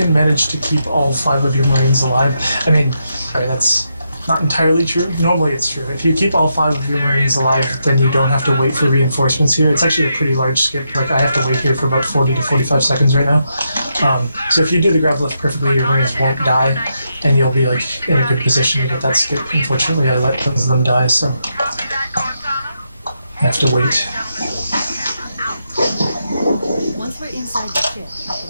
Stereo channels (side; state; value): both; inverted; correlation -0.82